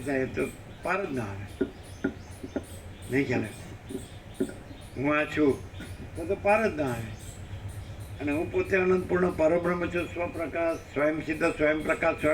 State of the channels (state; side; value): identical; both; correlation 1.00